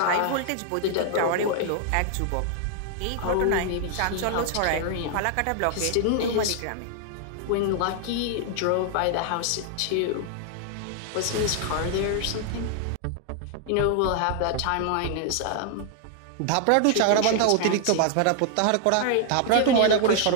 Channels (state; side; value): different; both; correlation 0.00